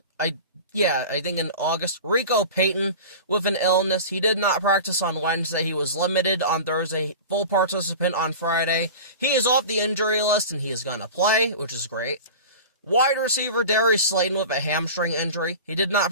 I think in August, Rico Payton with an illness. He did not practice on Wednesday. He was limited on Thursday, full participant on Friday. He is off the injury list, and he is going to play, which is great. Wide receiver Darius Slayton with a hamstring injury. He did not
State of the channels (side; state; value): both; inverted; correlation -0.34